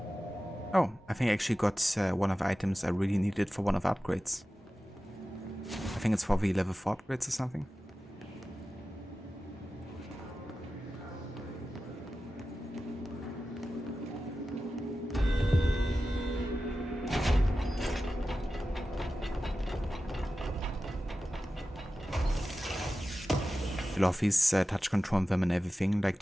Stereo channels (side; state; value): both; normal; correlation 0.94